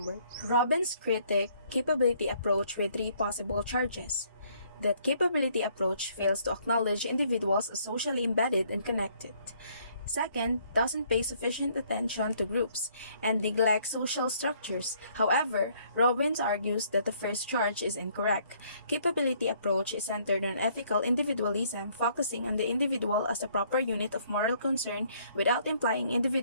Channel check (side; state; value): both; inverted; correlation -0.64